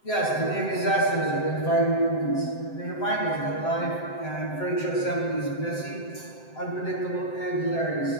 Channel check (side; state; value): right; late; 7.7 ms